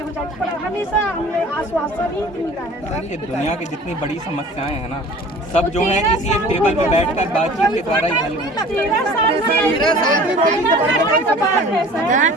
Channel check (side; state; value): both; normal; correlation 0.45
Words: जाएगा, पर हमेशा हमें आश्वासन ही मिला है सर। ये दुनिया की जितनी बड़ी समस्याएं हैं ना, सब जो है किसी एक टेबल में बैठकर बातचीत के द्वारा ही हल होती है। 13 साल